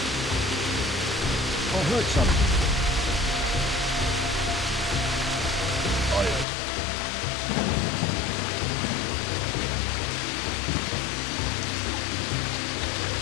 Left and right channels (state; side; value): drops out; right; at 6.5 s